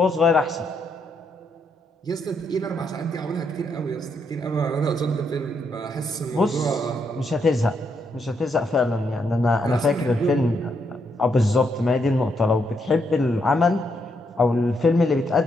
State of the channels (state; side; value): normal; both; correlation 0.77